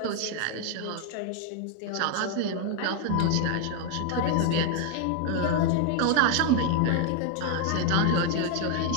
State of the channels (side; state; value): both; different; correlation 0.00